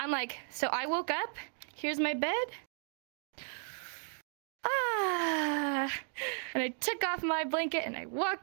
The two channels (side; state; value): left; silent; 54 dB below the other